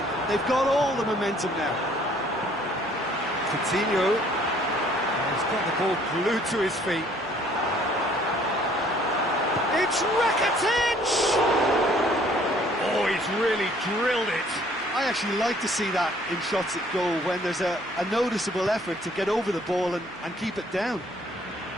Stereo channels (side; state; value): left; noise; hum, 28 dB below the sound